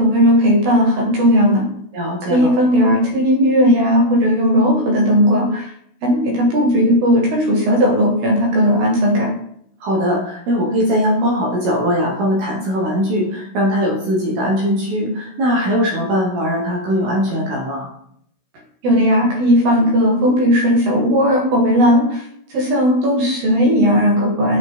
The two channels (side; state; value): left; late; 16 ms